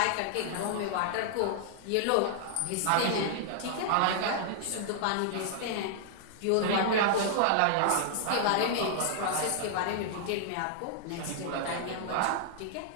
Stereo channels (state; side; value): different; both; correlation -0.01